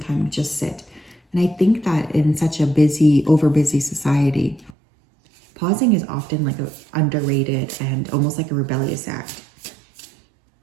to just sit. And I think that in such a busy, over-busy society, pausing is often like underrated and almost like a rebellious act.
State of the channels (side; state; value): left; drops out; at 4.8 s